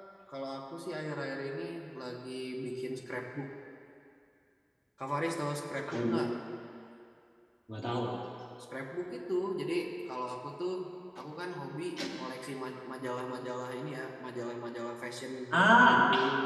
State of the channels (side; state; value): both; identical; correlation 1.00